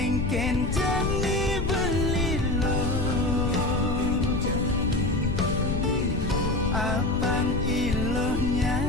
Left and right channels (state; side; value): noise; left; rumble, 2 dB below the sound